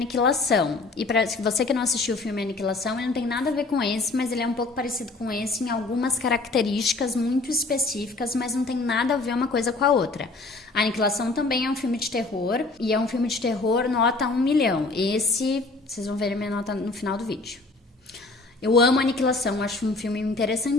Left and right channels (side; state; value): right; quieter; 3.4 dB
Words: E para você que não assistiu o filme Aniquilação, ele não tem nada a ver com esse, mas ele é um pouco parecido com esse em algumas características muito específicas, mas não tem nada a ver uma coisa com a outra. A Aniquilação também é um filme de terror, e é um filme de terror nota 1 milhão. Esse, vocês vão ver a minha nota no final do vídeo. Eu amo Aniquilação, acho um filme